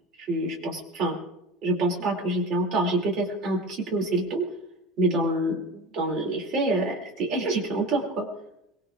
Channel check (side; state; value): both; normal; correlation 0.31